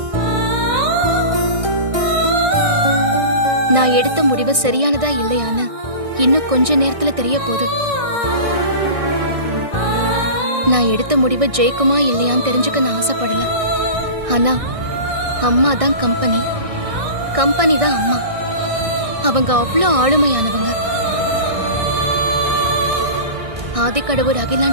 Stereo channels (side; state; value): left; late; 1.6 ms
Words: நான் எடுத்த முடிவு சரியானதா இல்லையான்னு இன்னும் கொஞ்ச நேரத்துல தெரிய போகுது. நான் எடுத்த முடிவு ஜெயிக்குமா இல்லையான்னு தெரிஞ்சுக்க நான் ஆசைப்படல. ஆனா அம்மா தான் கம்பெனி, கம்பெனி தான் அம்மா. அவங்க அவ்வளோ ஆளுமையானவங்க. ஆதிக்கடவுர்